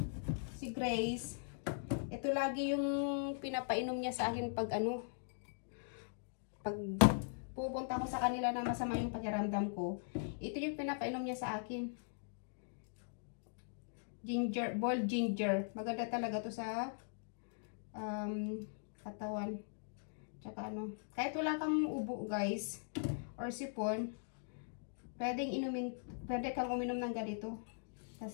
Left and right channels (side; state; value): right; silent; digital silence